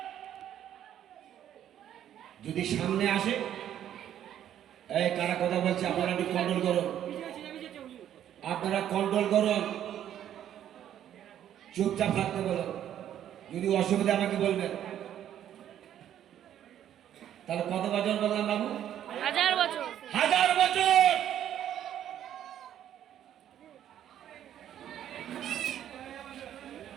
যদি সামনে আসে, এই কারা কথা বলছে আপনারা একটু কন্ট্রোল করুন, আপনারা কন্ট্রোল করুন, চুপচাপ থাকতে বলুন। যদি অসুবিধা আমাকে বলবেন। তাহলে কত বছর বললাম বাবু? 1000 বছর। 1000 বছর।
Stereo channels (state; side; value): quieter; left; 10.8 dB